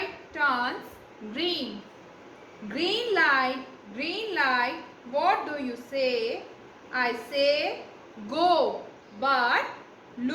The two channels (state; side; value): identical; both; correlation 1.00